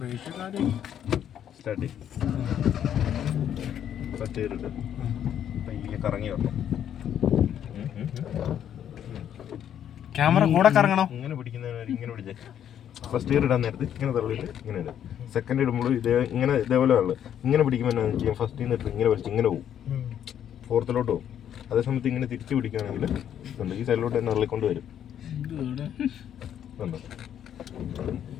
start first ചെയ്തിട്ട് പയ്യെ കറങ്ങി വരണം. ക്യാമറ കൂടെ കറങ്ങണം. ഇങ്ങനെ പിടിക്കുന്നവരെ ഇങ്ങനെ പിടിച്ചേ. ഫസ്റ്റ് ഇയർ ഇടാൻ നേരത്ത് ഇങ്ങനെ തള്ളിയിട്ട് ഇങ്ങനെ ഇടും. സെക്കൻഡ് ഇടുമ്പോൾ ഇതേപോലെ ഉള്ളു. ഇങ്ങനെ പിടിക്കുമ്പോൾ എന്നാ ചെയ്യാം, ഫസ്റ്റ് നിന്നിട്ട് ഇങ്ങനെ വലിച്ച് ഇങ്ങനെ പോകും, ഫോർത്തിലോട്ട് പോകും. അതേ സമയത്ത് ഇങ്ങനെ തിരിച്ച് പിടിക്കുകയാണെങ്കിൽ ഉണ്ട് ഈ സൈഡിലോട്ട് തന്നെ തള്ളിക്കൊണ്ട് വരും.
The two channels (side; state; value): right; quieter; 9.8 dB